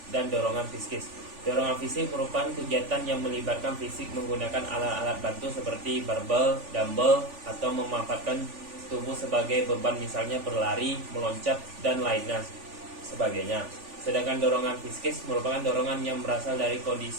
dan dorongan psikis. Dorongan fisik merupakan kegiatan yang melibatkan fisik menggunakan alat-alat bantu seperti barbel, dumbbell, atau memanfaatkan tubuh sebagai beban, misalnya berlari, meloncat, dan lainnya sebagainya. Sedangkan dorongan psikis merupakan dorongan yang berasal dari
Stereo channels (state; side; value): late; left; 3.4 ms